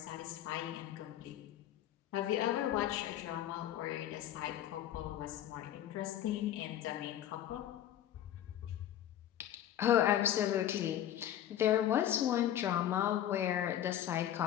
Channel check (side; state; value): right; quieter; 11.5 dB